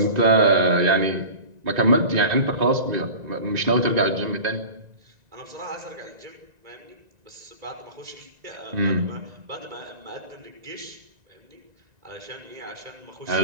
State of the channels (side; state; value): left; late; 1.9 ms